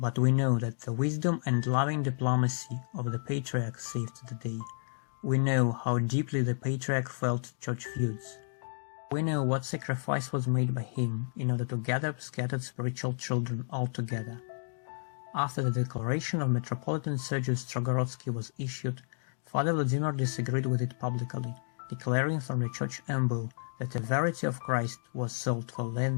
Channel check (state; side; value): silent; right; digital silence